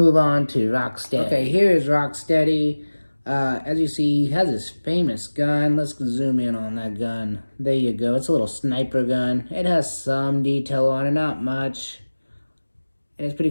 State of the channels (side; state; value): both; inverted; correlation -1.00